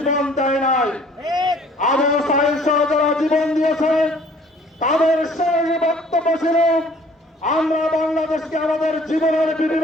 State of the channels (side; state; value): both; normal; correlation 0.55